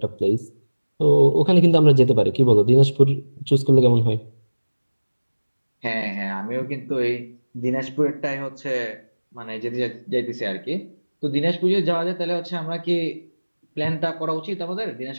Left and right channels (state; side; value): inverted; both; correlation -1.00